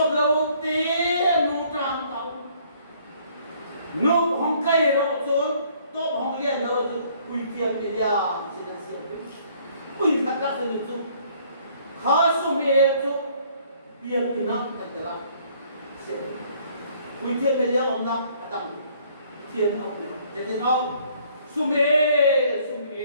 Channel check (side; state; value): both; inverted; correlation -0.61